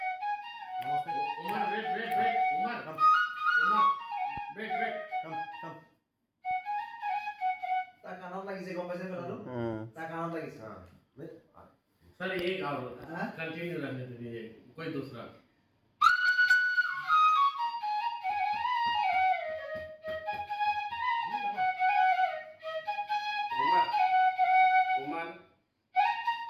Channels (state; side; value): identical; both; correlation 1.00